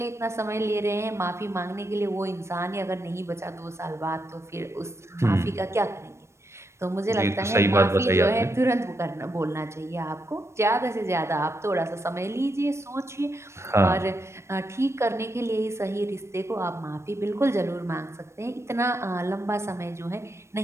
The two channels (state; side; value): late; left; 0.13 ms